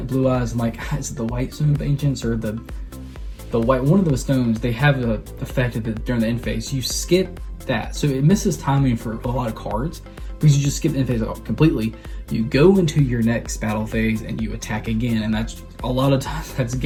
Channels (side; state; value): both; identical; correlation 1.00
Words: Blue Eyes and like, is it the White Stone of Ancients or the white, one of those stones, they have the effect during the end phase. You skip that. So it misses timing for a lot of cards because you just skip the end phase completely. You go into your next battle phase and you attack again. And that's a lot of times that's